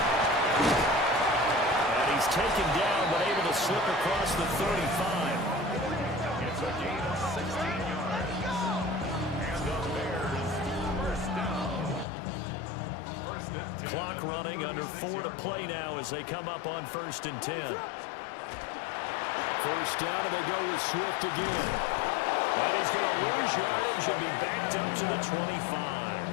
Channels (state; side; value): drops out; right; at 12.1 s